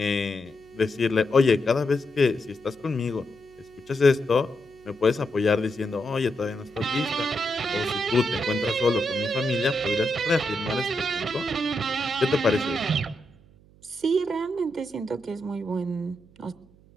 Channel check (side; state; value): right; noise; hum, 27 dB below the sound